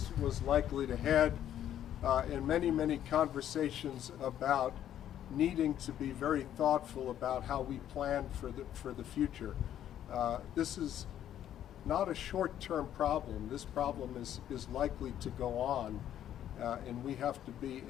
likely to head. and many, many conversations about needing to be very thoughtful about how we plan for the future. This is not a short-term problem. This problem is likely to go on, and we have to be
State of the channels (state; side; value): quieter; right; 10.9 dB